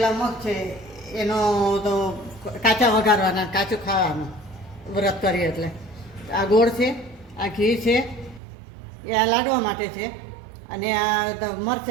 મગ છે એનો તો કાચા વઘારવાના, કાચું ખાવાનું વ્રત કરીએ એટલે. આ ગોળ છે, આ ઘી છે, એ આ લાડવા માટે છે. અને આ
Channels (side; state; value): left; drops out; at 8.4 s